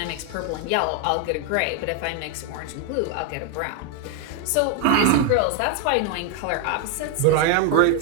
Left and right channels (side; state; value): both; different; correlation 0.01